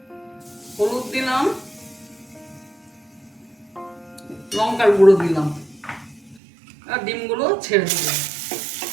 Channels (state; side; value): drops out; left; at 6.4 s